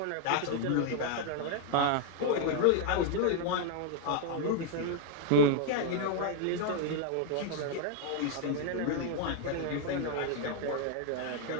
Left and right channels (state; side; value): different; both; correlation 0.00